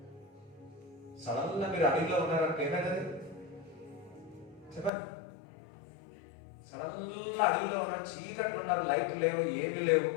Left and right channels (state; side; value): drops out; right; at 4.9 s